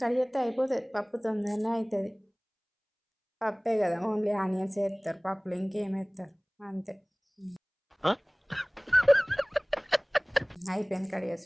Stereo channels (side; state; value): both; identical; correlation 1.00